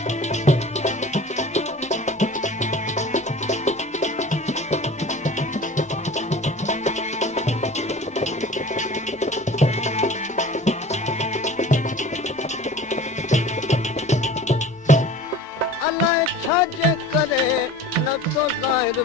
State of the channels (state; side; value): normal; both; correlation 0.41